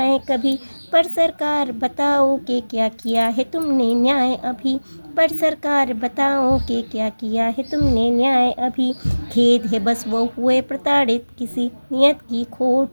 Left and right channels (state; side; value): inverted; both; correlation -1.00